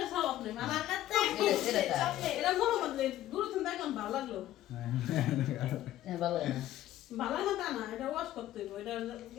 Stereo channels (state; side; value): quieter; right; 13.6 dB